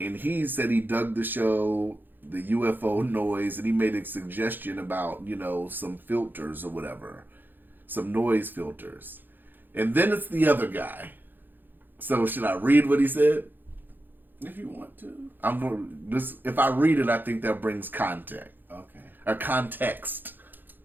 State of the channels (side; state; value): left; late; 0.091 ms